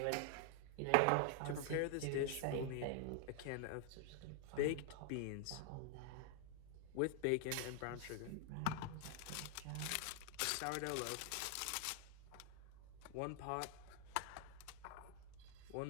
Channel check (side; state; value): both; different; correlation 0.00